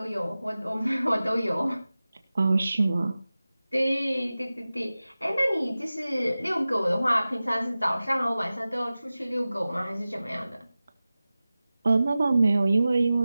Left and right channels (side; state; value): both; inverted; correlation -0.96